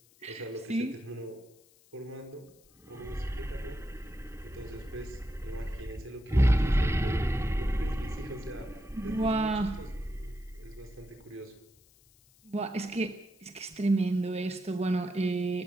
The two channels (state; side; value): noise; left; hiss, 29 dB below the sound